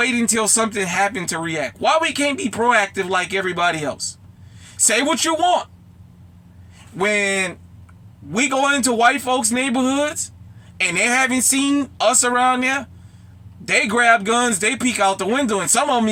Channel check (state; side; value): identical; both; correlation 1.00